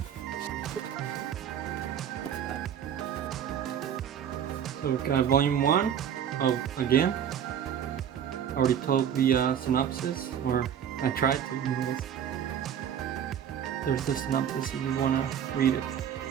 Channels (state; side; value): quieter; left; 9.0 dB